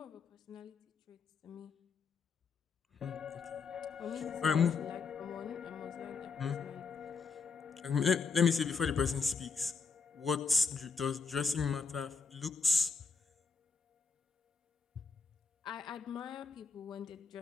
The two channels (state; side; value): quieter; right; 4.9 dB